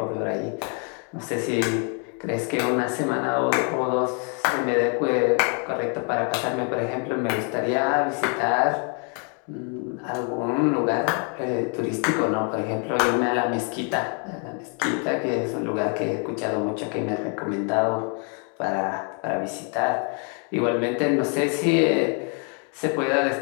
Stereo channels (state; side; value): quieter; right; 39.6 dB